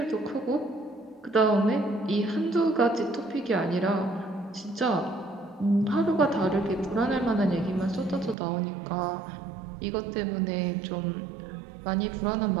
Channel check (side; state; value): left; drops out; at 8.3 s